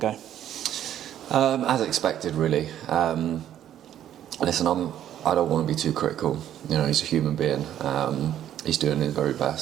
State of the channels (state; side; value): quieter; left; 11.0 dB